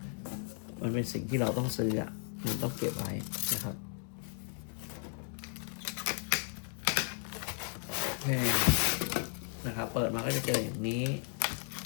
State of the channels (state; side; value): silent; right; 54 dB below the other